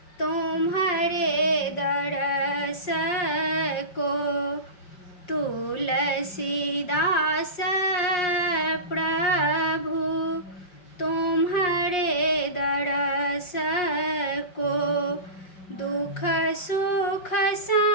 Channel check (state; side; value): late; right; 5.6 ms